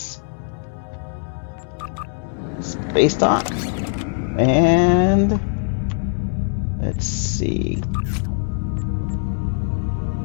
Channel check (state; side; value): silent; right; 55 dB below the other